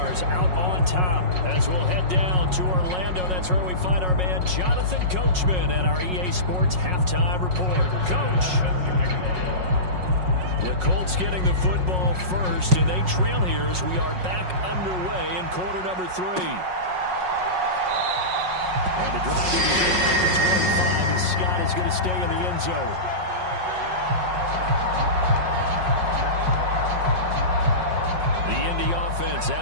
out on top. As we'll head down to Orlando, that's where we find our man Jonathan Coachman at our EA Sports Halftime Report. Coach. The Colts getting the football first, and they trail here as we are back underway in quarter number 3. And the drive to the 25 as Scott is going to stay in the end zone. Offense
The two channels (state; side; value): late; left; 5.5 ms